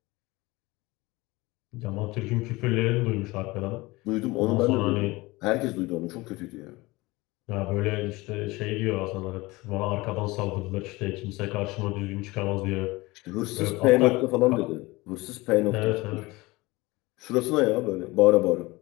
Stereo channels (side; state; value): right; quieter; 21.7 dB